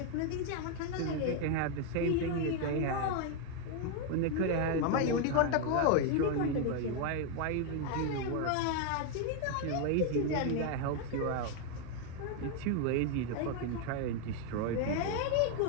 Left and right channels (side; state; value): both; different; correlation 0.01